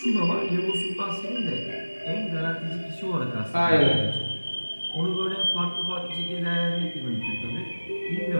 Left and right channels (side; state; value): both; inverted; correlation -1.00